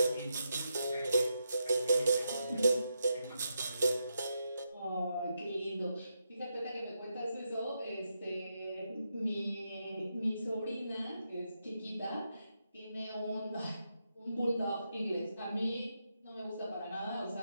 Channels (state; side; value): inverted; both; correlation -0.84